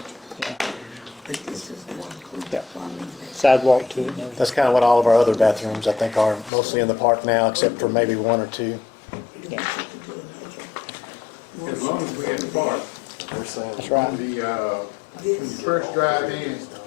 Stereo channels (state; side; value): drops out; right; at 6.5 s